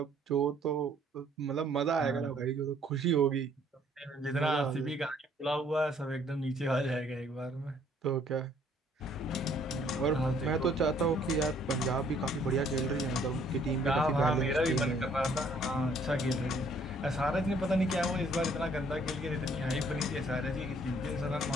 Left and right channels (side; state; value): both; normal; correlation 0.62